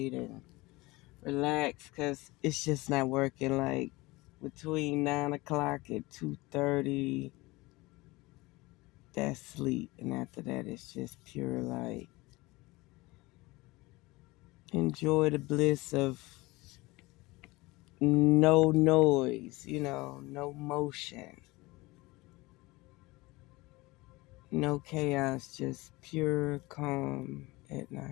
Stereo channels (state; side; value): quieter; right; 21.9 dB